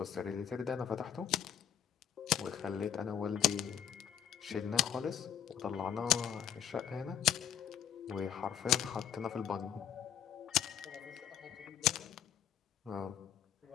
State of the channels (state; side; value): quieter; right; 9.4 dB